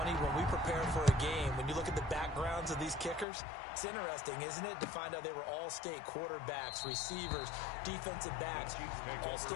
when we prepare for a game, when you look at the backgrounds of these kickers, it's interesting, isn't it, to find out they were all-state quarterbacks, receivers, defensive backs,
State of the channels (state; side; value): drops out; right; at 3.2 s